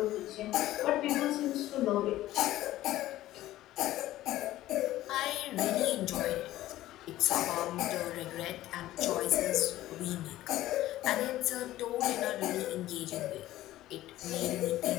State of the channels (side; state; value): right; quieter; 15.1 dB